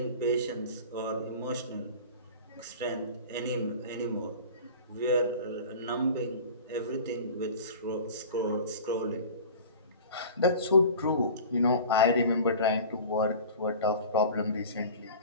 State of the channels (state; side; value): inverted; both; correlation -0.38